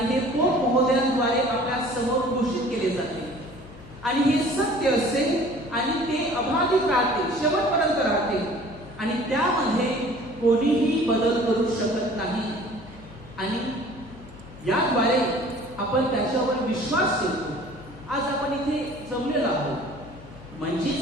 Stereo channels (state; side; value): noise; left; hum, 19 dB below the sound